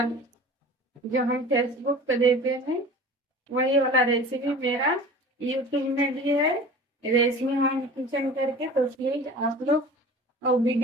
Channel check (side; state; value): both; normal; correlation 0.40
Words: जो हम फेसबुक पे देते हैं वही वाला रेसिपी मेरा यूट्यूब में भी है, रेशमी होम किचन करके। तो प्लीज आप लोग और